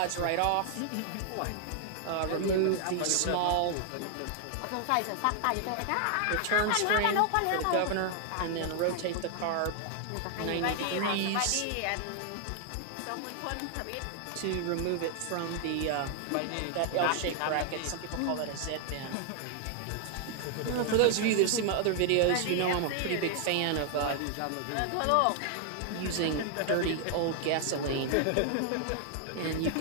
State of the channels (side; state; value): both; different; correlation 0.00